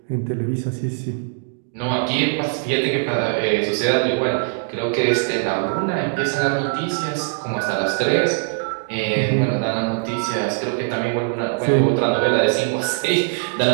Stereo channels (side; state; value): left; silent; digital silence